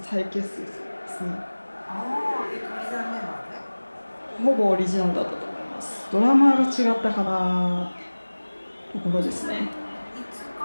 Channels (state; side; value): inverted; both; correlation -1.00